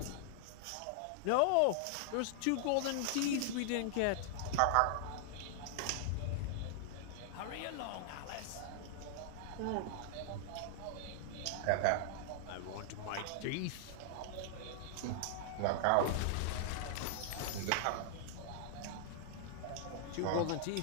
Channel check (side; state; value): both; different; correlation -0.01